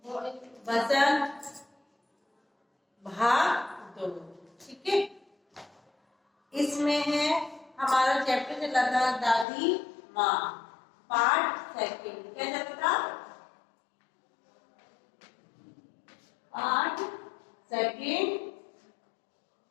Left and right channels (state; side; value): drops out; right; at 9.5 s